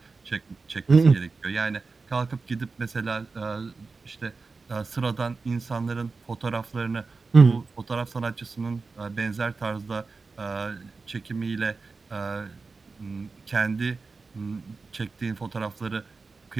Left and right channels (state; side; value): quieter; left; 4.2 dB